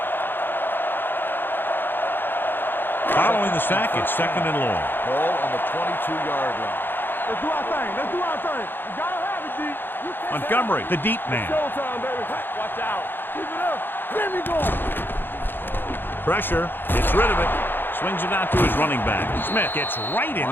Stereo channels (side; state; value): right; late; 0.098 ms